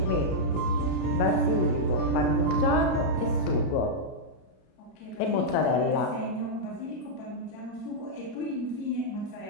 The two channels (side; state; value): right; late; 33 ms